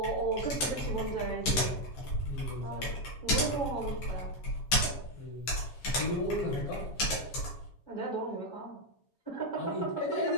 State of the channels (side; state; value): right; late; 7.3 ms